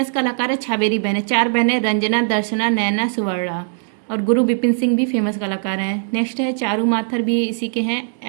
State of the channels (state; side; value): silent; left; digital silence